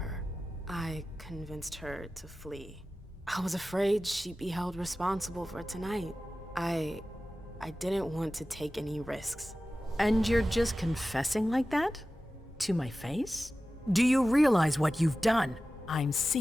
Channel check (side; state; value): both; normal; correlation 0.95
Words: I convinced her to flee. I was afraid she'd be held responsible for tonight. I didn't want to take any risks. And you're just confessing like that? To my face? Do you realize what you've done? I'm